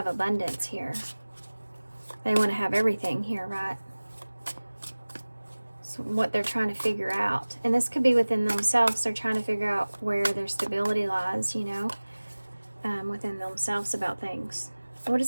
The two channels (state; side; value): inverted; both; correlation -1.00